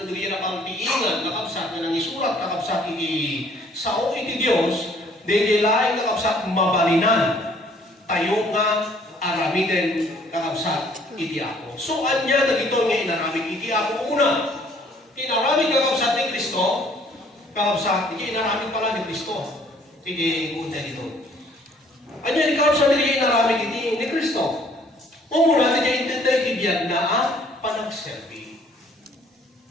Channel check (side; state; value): both; normal; correlation 0.59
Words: dyan napangtiingan kakabsat nga nang isurat kakabsat iti sao iti Diyos, di dyan laing kakabsat mabalinan tayo nga aramiden kakabsat iti ako. So anya na dito nga inaramid iti ako una. Inaramid kakabsat ni Kristo, kakabsat, hindi inaramid pala ni Kristo. Sige, punta dito. Ano yung kakabsat hindi inaramid ni Kristo? Umuna, hindi intentay tibiyag na panagserbi.